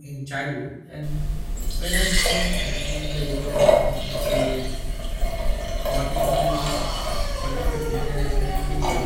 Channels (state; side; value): identical; both; correlation 1.00